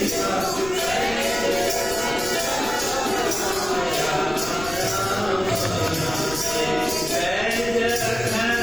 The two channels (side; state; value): left; noise; rumble, 13 dB below the sound